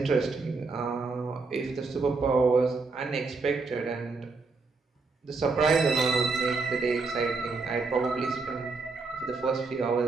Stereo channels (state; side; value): quieter; left; 4.1 dB